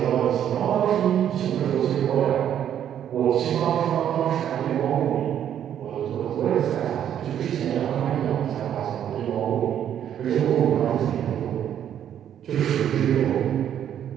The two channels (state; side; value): quieter; left; 9.9 dB